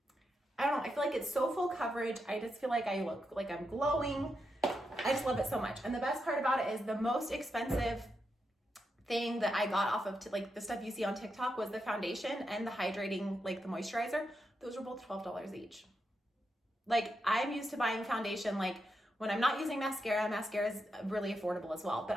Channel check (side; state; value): both; normal; correlation 0.85